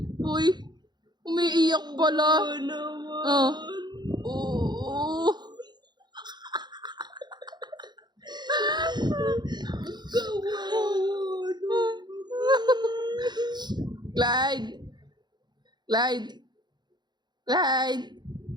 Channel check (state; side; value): late; left; 0.21 ms